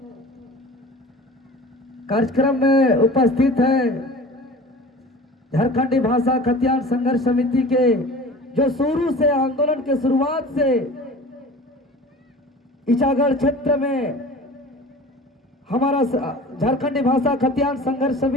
कार्यक्रम में उपस्थित है झारखंडी भाषा खतियान संघर्ष समिति के, जो शुरू से आंदोलन के शुरुआत से इचागढ़ क्षेत्र में हमारा झारखंडी भाषा खतियान संघर्ष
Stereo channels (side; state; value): both; normal; correlation 0.40